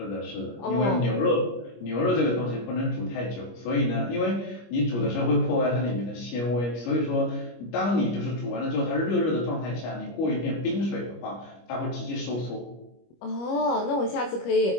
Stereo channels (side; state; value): right; late; 25 ms